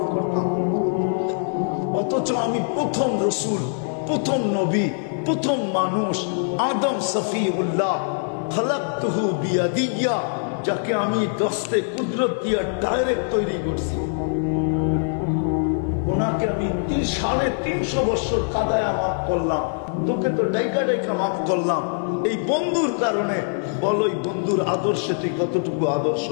করতাম। অথচ আমি প্রথম রসুল, প্রথম নবী, প্রথম মানুষ, আদম সফিউল্লাহ, খালাকতুহু বিয়াদিয়া, যাকে আমি দস্তে কুদরত দিয়া ডাইরেক্ট তৈরি করছি, ওনাকে আমি 350 বছর কাদায়া মাফ করলাম। তোকে তো ডাইকা ডাইকা মাফ করলাম এই বন্ধুর কারণে। বলো এই বন্ধুর আদর্শে তুই কতটুকু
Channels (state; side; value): silent; right; digital silence